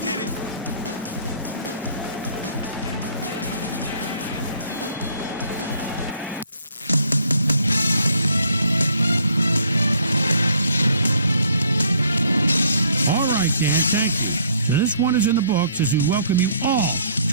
You did it. This one is in the books as we welcome you all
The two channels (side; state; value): both; inverted; correlation -0.62